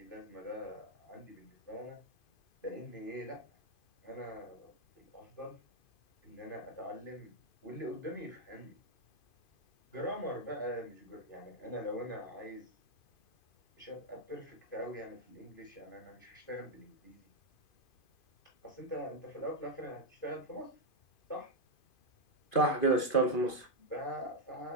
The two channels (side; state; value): right; late; 2.5 ms